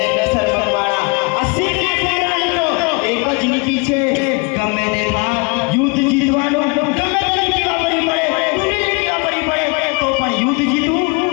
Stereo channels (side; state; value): right; quieter; 30.4 dB